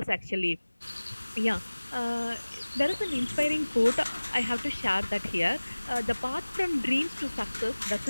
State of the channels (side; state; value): both; inverted; correlation -1.00